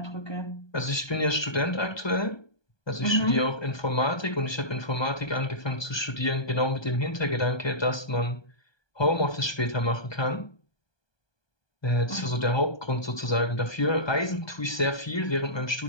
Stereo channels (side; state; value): right; late; 1.2 ms